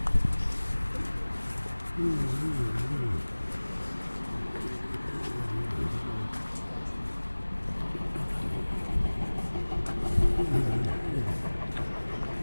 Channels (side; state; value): both; inverted; correlation -1.00